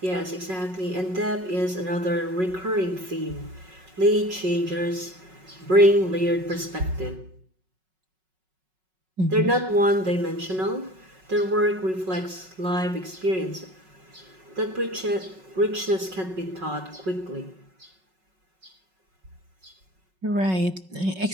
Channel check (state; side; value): late; left; 5.4 ms